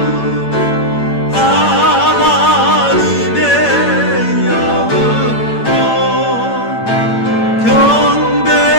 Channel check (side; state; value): right; late; 8.8 ms